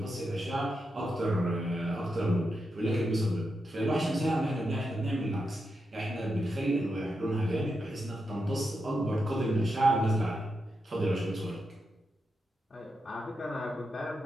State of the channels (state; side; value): normal; both; correlation 0.86